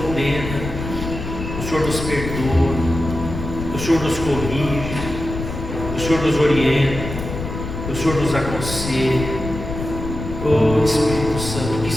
o Senhor nos perdoa, o Senhor nos corrige, o Senhor nos orienta, o Senhor nos aconselha. Oh, Espírito Santo, o que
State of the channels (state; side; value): noise; left; rumble, 7 dB below the sound